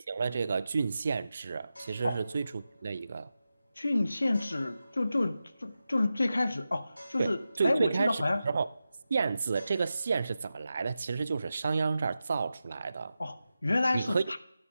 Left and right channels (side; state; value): both; inverted; correlation -0.92